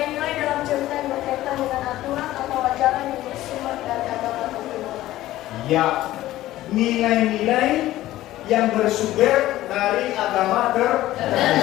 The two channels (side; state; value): right; quieter; 15.2 dB